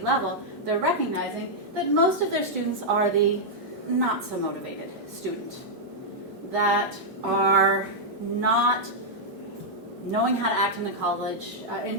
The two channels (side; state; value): both; normal; correlation -0.05